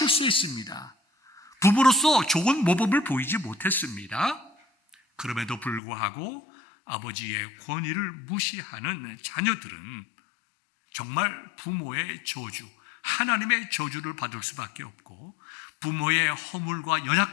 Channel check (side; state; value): right; drops out; at 5.8 s